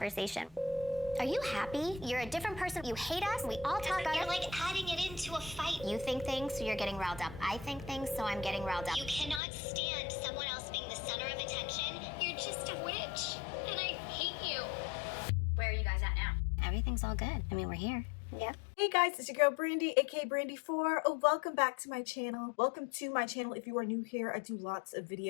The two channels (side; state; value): right; drops out; at 9.4 s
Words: Are you happy? You're a different person. You hate us. We all talk about it. You're like adding it into a fight. You think things, so you're getting riled up. I think things, so I'm getting riled up. You cannot stand someone else being the center of attention. You're just a witch, and I hate you. Where are you guys at now? Everything's all good. I mean, we're here. Yeah. Hey guys, it's your girl Brandy, aka Brandy4. Oh, welcome back to my channel. Welcome to my channel. If you are new here, I do lots of